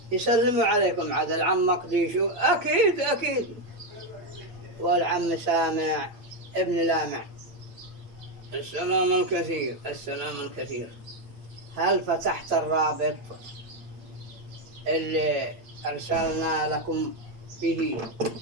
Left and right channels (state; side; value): late; left; 8.7 ms